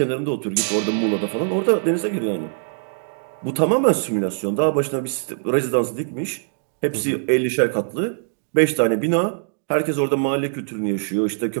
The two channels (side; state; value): left; silent; digital silence